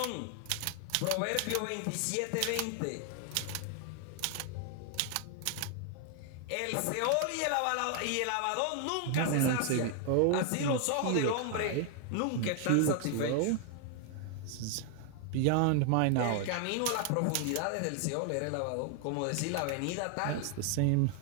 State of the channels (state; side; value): different; both; correlation 0.00